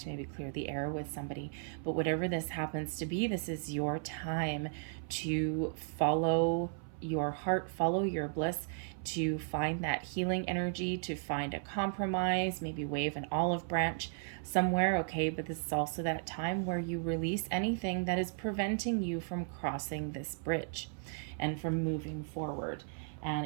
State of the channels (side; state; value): left; silent; 54 dB below the other